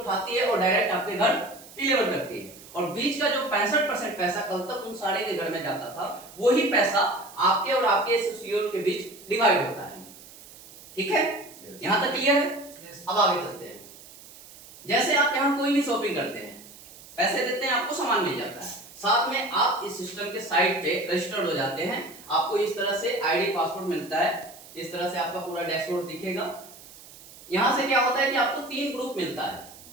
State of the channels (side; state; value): right; noise; hiss, 19 dB below the sound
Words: है और डायरेक्ट आपके घर डिलीवर करती है। और बीच का जो 65% पैसा कल तक उन सारे के घर में जाता था, वही पैसा आपके और आपके एसोसिएट के बीच डिवाइड होता है, ठीक है। यहां तक क्लियर है? अब आगे चलते हैं। जैसे आप यहाँ कोई भी शॉपिंग करते हैं, पैसे देते हैं, आपको सामान मिल जाता है, साथ में आप इस सिस्टम के साइट पे रजिस्टर्ड हो जाते हैं। आपको इस तरह से आईडी, पासवर्ड मिलता है, इस तरह से आपका पूरा डैशबोर्ड दिखेगा। यहां से क्या होता है कि आपको 3 ग्रुप मिलता है,